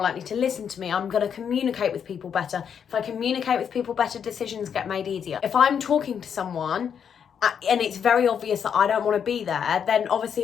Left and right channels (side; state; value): right; quieter; 7.7 dB